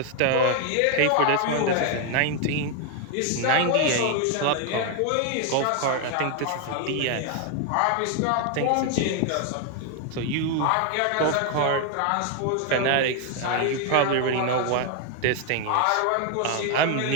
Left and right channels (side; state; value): both; different; correlation 0.01